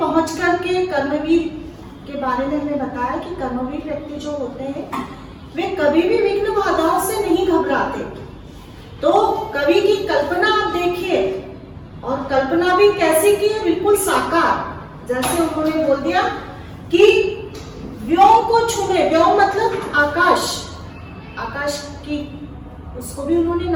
करके कर्मवीर के बारे में हमें बताया कि कर्मवीर व्यक्ति जो होते हैं वे कभी भी विघ्न बाधाओं से नहीं घबराते। तो कवि की कल्पना आप देखिए, और कल्पना भी कैसी की है, बिल्कुल साकार। जैसे उन्होंने बोल दिया कि व्योम को छूने, व्योम मतलब आकाश, आकाश की उसको भी उन्होंने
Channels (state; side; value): identical; both; correlation 1.00